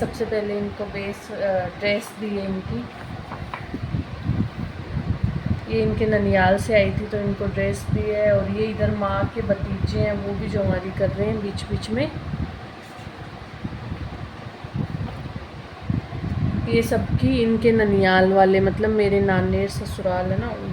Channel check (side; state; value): both; identical; correlation 1.00